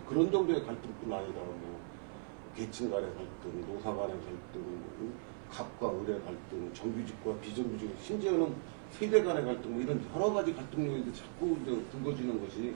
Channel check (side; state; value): left; silent; 52 dB below the other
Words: 그런 정도의 갈등뿐 아니라 뭐 계층 간의 갈등, 노사 간의 갈등, 갑과 을의 갈등, 정규직과 비정규직, 심지어는 세대 간의 갈등, 뭐 이런 여러 가지 갈등 요인이 자꾸 이제 불거지는 것이